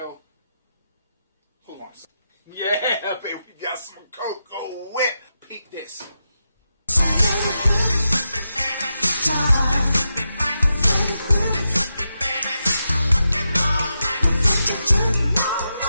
hold on a second. Yeah, baby, we got some cocoa whip. Peek this.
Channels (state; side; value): inverted; both; correlation -0.87